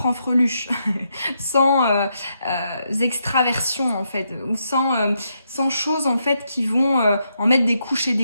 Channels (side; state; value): both; inverted; correlation -0.81